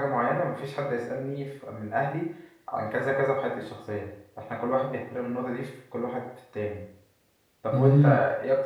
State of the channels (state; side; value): identical; both; correlation 1.00